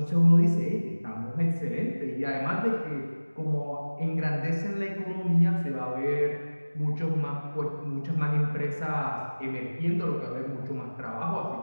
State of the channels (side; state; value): both; inverted; correlation -1.00